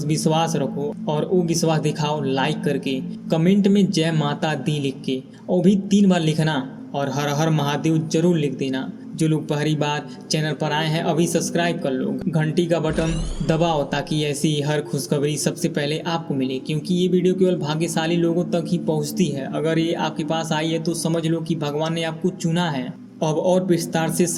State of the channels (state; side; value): identical; both; correlation 1.00